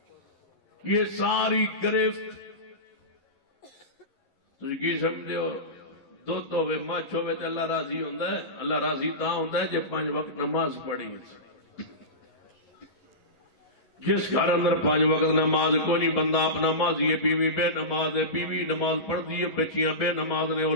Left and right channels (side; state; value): right; late; 11 ms